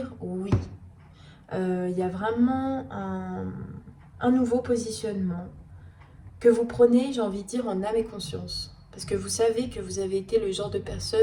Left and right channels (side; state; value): both; identical; correlation 1.00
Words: oui. Il y a vraiment un nouveau positionnement que vous prenez, j'ai envie de dire, en âme et conscience. Parce que vous savez que vous avez été le genre de